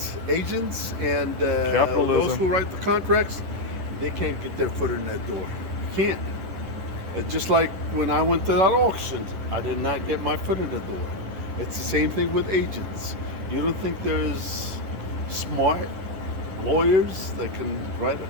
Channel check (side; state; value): left; late; 10 ms